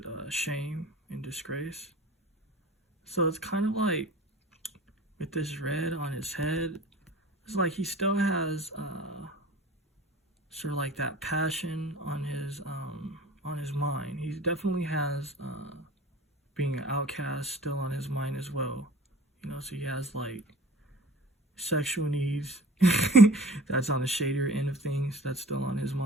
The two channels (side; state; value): both; normal; correlation 0.43